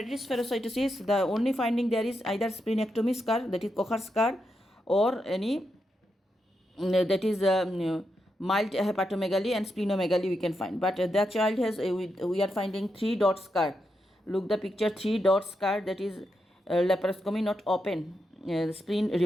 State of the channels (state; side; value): normal; both; correlation 0.84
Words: spherocytosis, the only finding there is either splenectomy scar, that is Kocher scar, or any that is mild hepatomegaly and splenomegaly we can find. But the child has we are finding 3 dot scar. Look the picture, 3 dot scar, that is laparoscopy, not open spleen